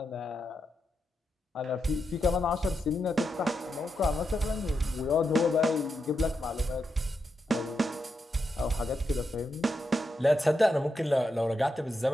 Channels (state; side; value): normal; both; correlation 0.85